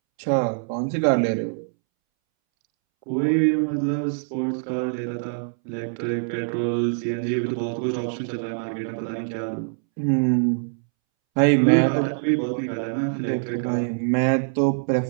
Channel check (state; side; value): silent; left; 63 dB below the other